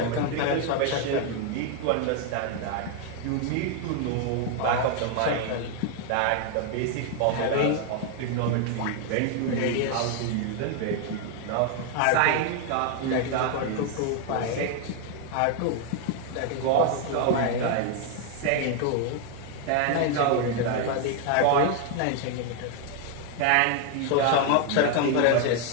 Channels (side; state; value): both; different; correlation 0.01